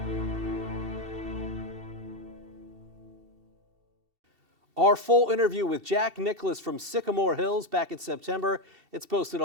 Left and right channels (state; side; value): late; left; 2.7 ms